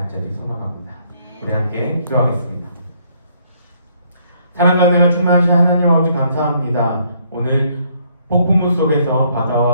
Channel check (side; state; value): both; inverted; correlation -0.68